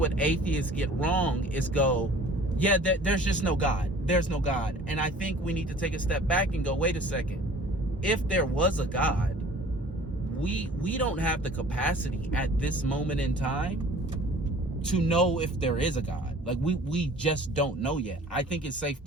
atheists get wrong is there's just no God. There's no God. And I think we need to take a step back and go, wait a second. If there was a God, we don't have the capacity at this moment in time to know if there is a God. Like we just don't know yet. I think it's safe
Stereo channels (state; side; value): normal; both; correlation 0.48